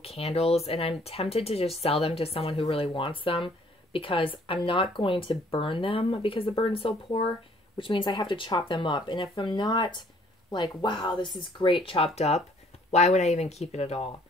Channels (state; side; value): normal; both; correlation 0.60